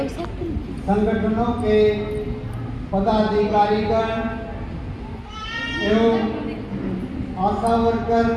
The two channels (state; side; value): identical; both; correlation 1.00